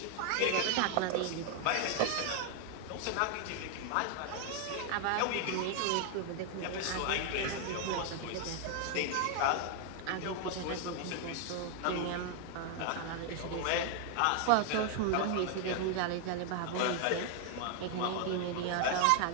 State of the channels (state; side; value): different; both; correlation 0.00